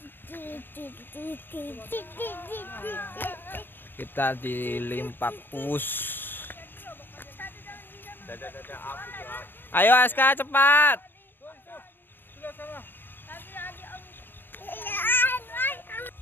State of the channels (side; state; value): right; late; 0.096 ms